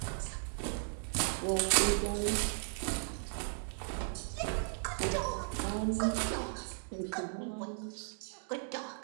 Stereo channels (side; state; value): left; silent; 54 dB below the other